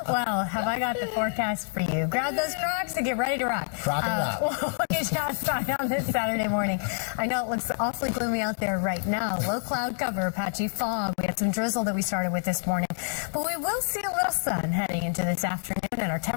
Well, have I got the forecast for you? Grab those Crocs and get ready to rock. Rock and rock. We'll get you outside on this Saturday morning. I know it looks awfully gloomy out there right now. Low cloud cover, patchy fog. We had some drizzle that we started with this morning. But we will see a little sun heading into this afternoon, and our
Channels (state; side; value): silent; right; 58 dB below the other